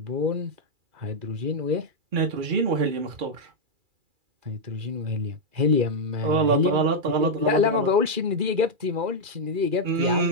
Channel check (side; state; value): left; late; 2.3 ms